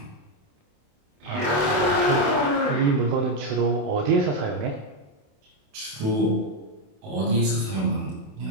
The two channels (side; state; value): left; late; 28 ms